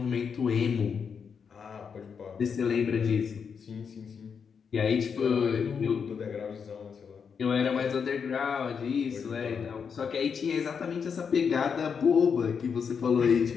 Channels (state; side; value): quieter; right; 6.4 dB